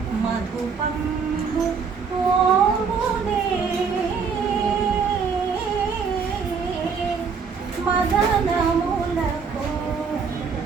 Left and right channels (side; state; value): left; quieter; 5.7 dB